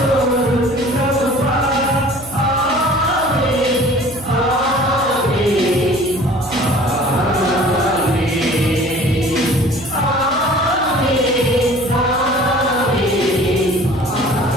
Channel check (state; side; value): noise; right; hum, 19 dB below the sound